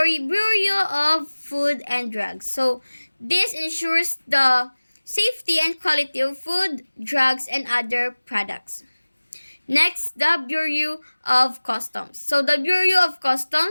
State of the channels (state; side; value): inverted; both; correlation -1.00